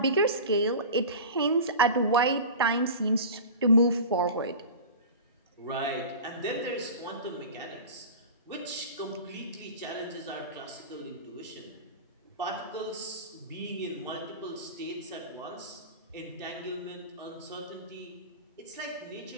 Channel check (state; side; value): inverted; both; correlation -0.33